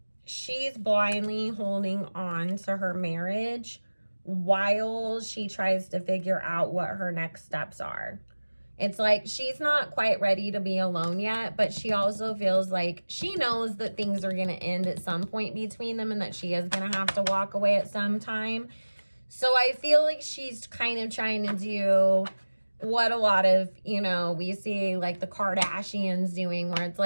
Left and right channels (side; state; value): both; inverted; correlation -1.00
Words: she's blindly holding on to her marriage while she tries to figure out what her next steps are. It's like she's not quite ready to be alone yet, but she also feels like she knows that things are going to end at some point between them and that she is going to have to walk away at some time. So I feel like she's kind of trying to do what a lot of, you know, we see like the Kardashians doing, where it's